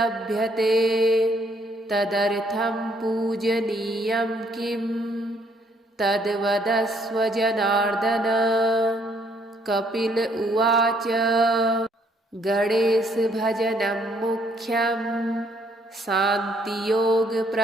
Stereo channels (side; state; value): both; normal; correlation 0.67